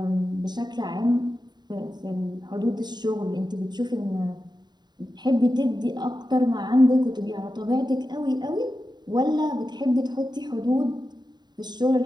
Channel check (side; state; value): left; late; 0.21 ms